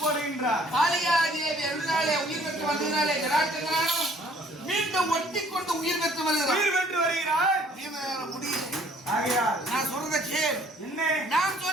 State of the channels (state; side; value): normal; both; correlation 0.59